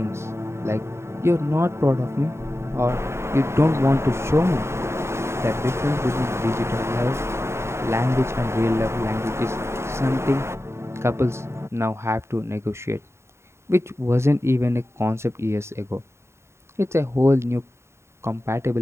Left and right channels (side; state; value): left; late; 0.13 ms